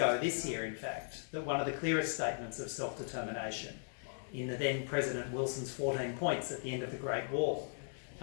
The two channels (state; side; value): silent; right; digital silence